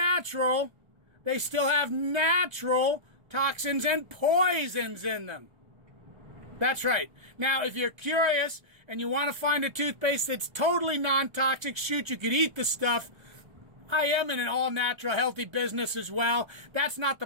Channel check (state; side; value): late; left; 1.3 ms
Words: they still have natural toxins and poisons in them. That's right. Now, if you're curious and you want to find a toothpaste that's totally non-toxic, shoot, you could eat the stuff. I am in an all-natural, healthy business as well. That's not the